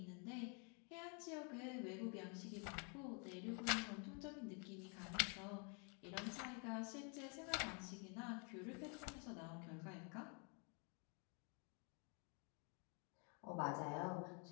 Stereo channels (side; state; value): right; quieter; 36.8 dB